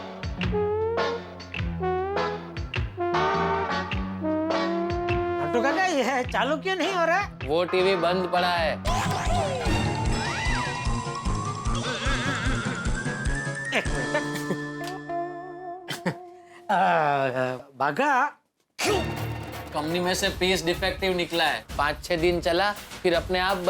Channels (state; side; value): identical; both; correlation 1.00